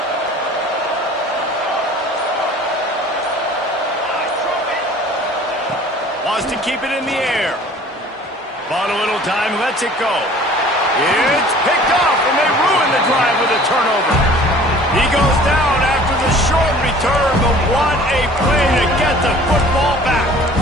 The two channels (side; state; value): both; normal; correlation 0.48